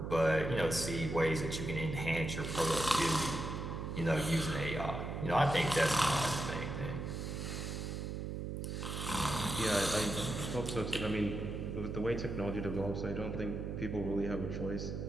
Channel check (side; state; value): right; noise; hum, 4 dB below the sound